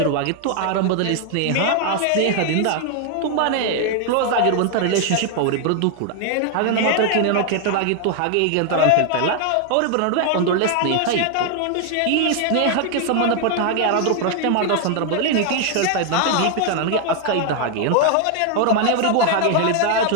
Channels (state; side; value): different; both; correlation 0.00